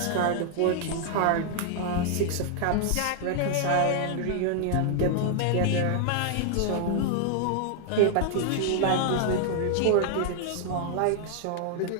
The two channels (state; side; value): different; both; correlation 0.00